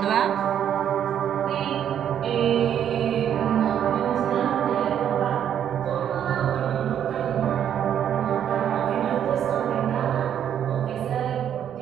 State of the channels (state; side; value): quieter; left; 9.5 dB